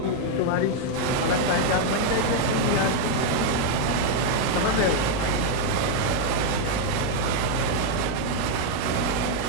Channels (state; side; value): different; both; correlation 0.00